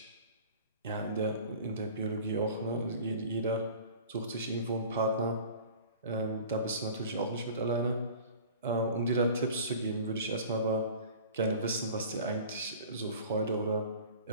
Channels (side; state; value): both; inverted; correlation -0.42